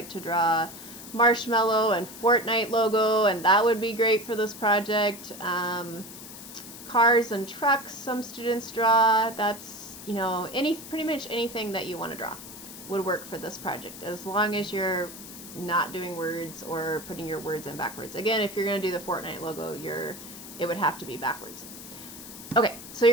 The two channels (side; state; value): left; noise; hiss, 14 dB below the sound